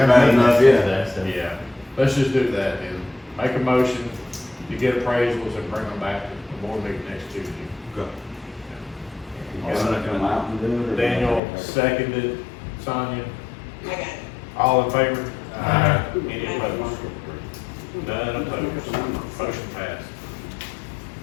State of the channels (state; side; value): drops out; right; at 11.4 s